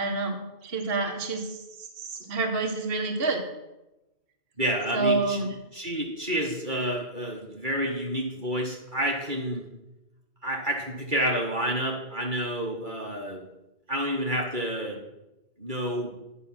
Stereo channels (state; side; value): late; left; 2.3 ms